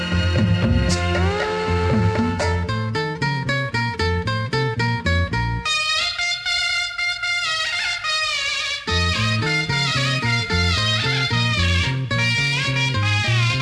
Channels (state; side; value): identical; both; correlation 1.00